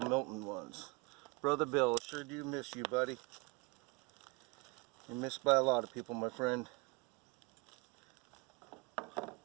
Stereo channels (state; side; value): quieter; left; 27.8 dB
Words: ones. Brother Bill, sure do miss you, buddy. You're missed by a lot of people, my friend.